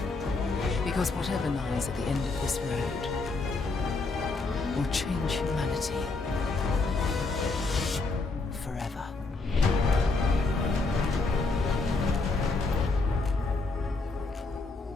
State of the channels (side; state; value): right; quieter; 3.7 dB